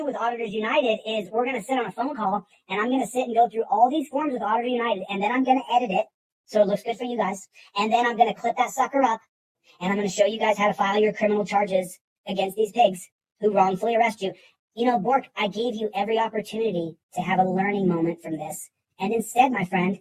with Auditors United is we're going to sit on a phone call, and I'm going to sit and go through all these forms with Auditor United, and then I'm going to edit it so it looks good for you guys. And then I'm going to clip that sucker up, and I'm going to show you guys how to file your criminal charges against these pigs who wrongfully arrest you. You know, Bork, I gave you every opportunity to have a learning moment from this. And instead, my friend,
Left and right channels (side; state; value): both; identical; correlation 1.00